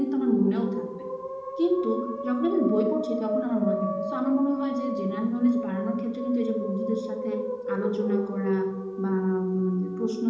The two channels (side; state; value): both; identical; correlation 1.00